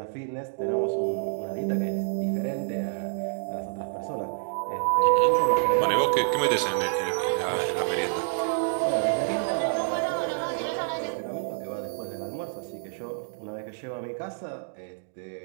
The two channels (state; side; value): silent; left; digital silence